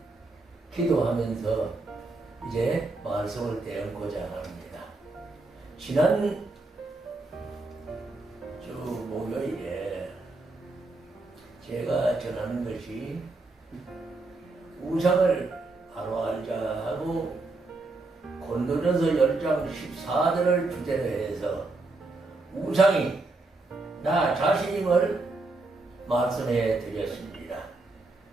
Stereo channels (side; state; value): left; quieter; 3.3 dB